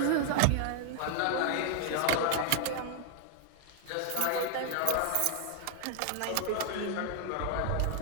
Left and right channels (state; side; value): different; both; correlation 0.00